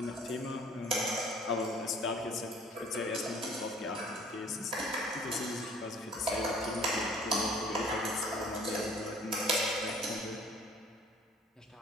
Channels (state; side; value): normal; both; correlation 0.53